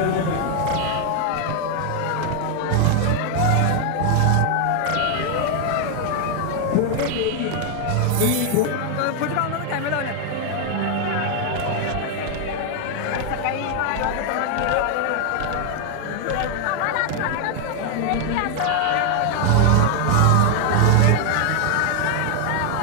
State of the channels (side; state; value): both; different; correlation 0.00